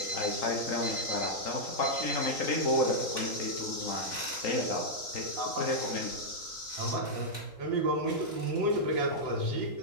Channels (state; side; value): late; right; 3.8 ms